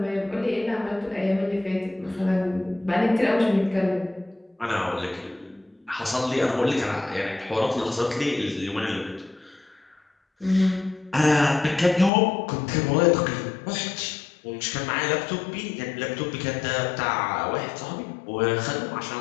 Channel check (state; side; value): drops out; right; at 12.1 s